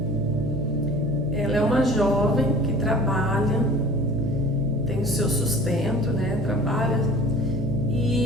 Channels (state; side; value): noise; right; hum, 7 dB below the sound